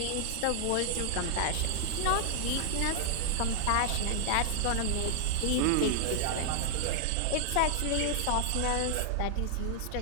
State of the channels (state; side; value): different; both; correlation 0.00